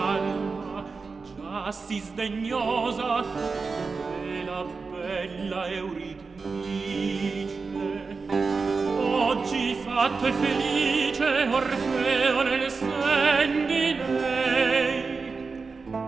già si sdegnosa della bella Euridice. Oggi fatto e felice Orfeo nel sen di lei,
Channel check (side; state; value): left; quieter; 4.5 dB